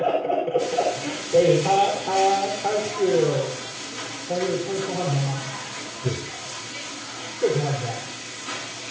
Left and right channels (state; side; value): identical; both; correlation 1.00